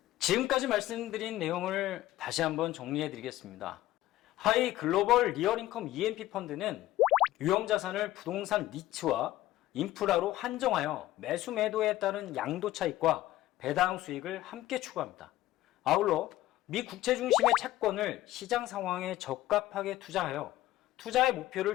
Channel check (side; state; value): right; quieter; 15.5 dB